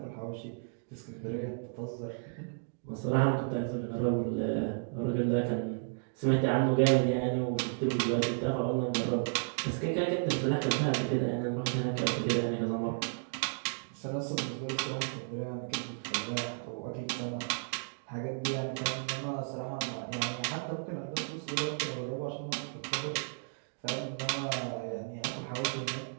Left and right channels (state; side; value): silent; left; digital silence